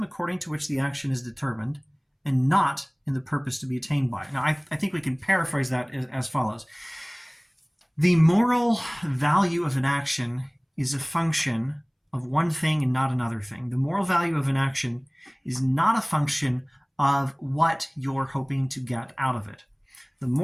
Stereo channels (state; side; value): identical; both; correlation 1.00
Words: according to which the action is determined, and not in the purpose to be attained by. Now I think we can paraphrase that as follows. The moral value of an action is a function of one thing and not another thing. The moral value of an action is not a function of what you're hoping to get out of it. The